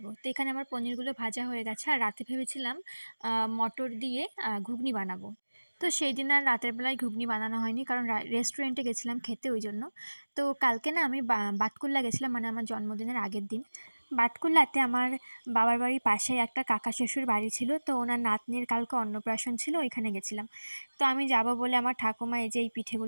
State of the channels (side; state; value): both; inverted; correlation -1.00